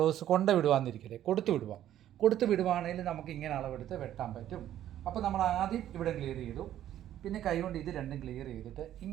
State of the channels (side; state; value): left; quieter; 11.8 dB